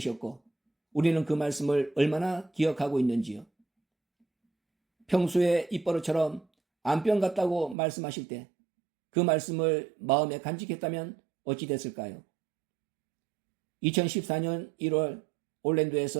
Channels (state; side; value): drops out; left; at 7.8 s